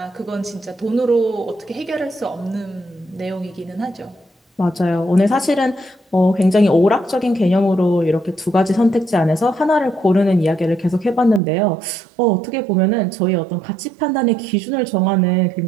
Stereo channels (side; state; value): left; drops out; at 11.4 s